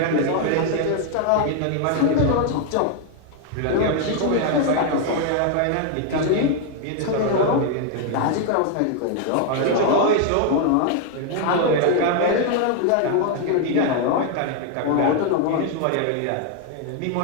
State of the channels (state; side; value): different; both; correlation 0.00